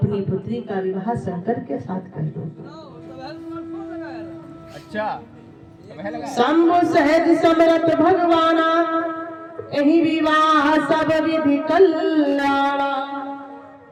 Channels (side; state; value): both; identical; correlation 1.00